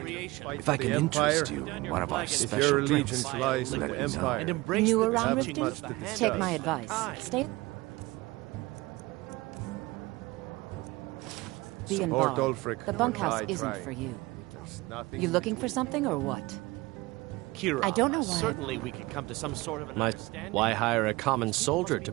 If I can interest you in one of our special drinks, lies with let the me know. Empire. New around Nothing much to Riften? discuss. Take my advice. Stay. Be and Support Barb. Ulfric. The bunkhouse I isn't tried. for you. There's nothing You looking for something or what? Kira, I don't know why. certainly we can come to some sort of an understanding. Why hire a common soldier to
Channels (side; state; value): left; quieter; 21.5 dB